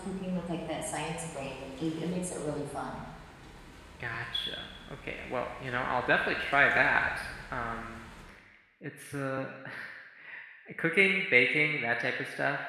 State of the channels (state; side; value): identical; both; correlation 1.00